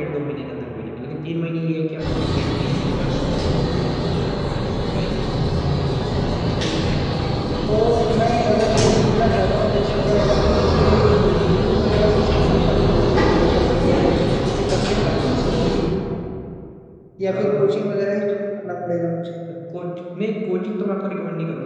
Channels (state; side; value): identical; both; correlation 1.00